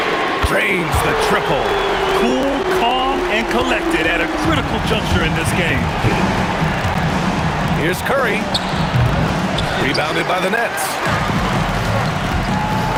Drains the triple. Cool, calm, and collected at a critical juncture in this game. Here's Curry. Rebounded by the Nets.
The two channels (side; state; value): both; identical; correlation 1.00